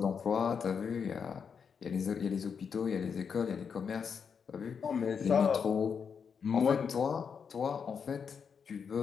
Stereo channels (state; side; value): quieter; right; 6.5 dB